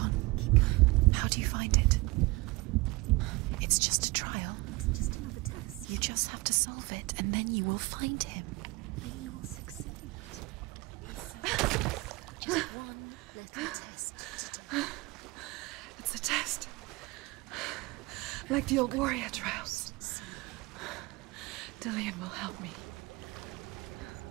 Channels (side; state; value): left; quieter; 22.9 dB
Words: Keep going. How do you find it? It's just a trial. It's just another test. You just have to solve it, and then you will find him. Then you will succeed. He's so close. Just one little test to do. It's a test. Like the old warrior trials. Dillian will help me.